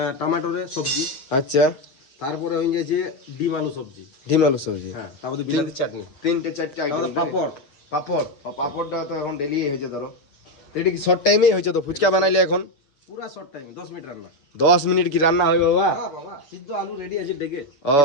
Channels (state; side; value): late; right; 7.2 ms